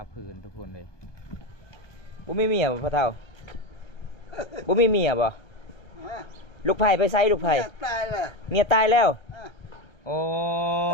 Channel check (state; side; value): late; right; 1.3 ms